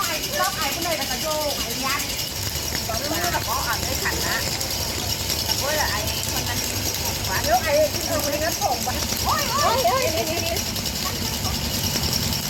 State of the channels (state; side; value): identical; both; correlation 1.00